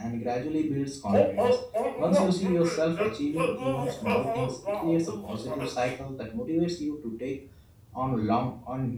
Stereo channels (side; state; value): both; identical; correlation 1.00